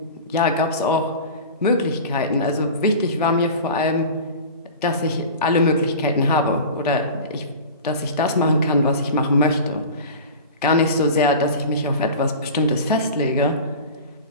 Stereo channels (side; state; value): both; inverted; correlation -0.34